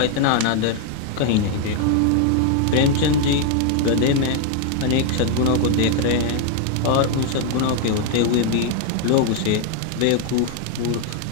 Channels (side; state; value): both; different; correlation 0.00